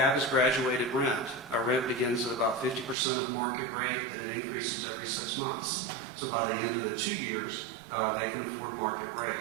is graduated rent. Our rent begins at about 50% of market rate, that it increases every 6 months. So by the end of the 2 years, they can afford market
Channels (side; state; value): left; drops out; at 3.0 s